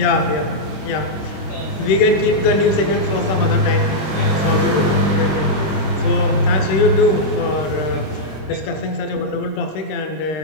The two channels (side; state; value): right; late; 26 ms